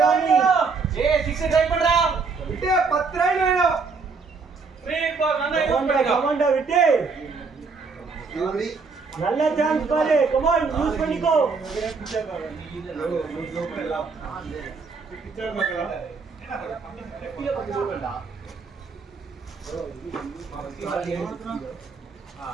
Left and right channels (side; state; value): left; quieter; 4.7 dB